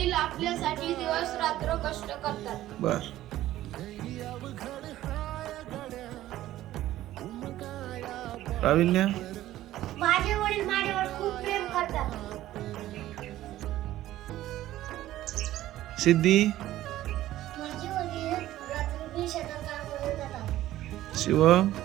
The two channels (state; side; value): quieter; left; 14.4 dB